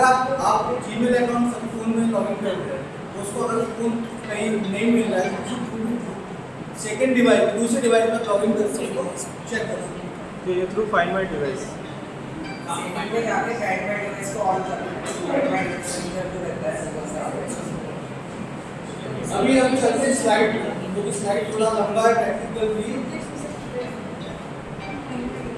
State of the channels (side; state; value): both; identical; correlation 1.00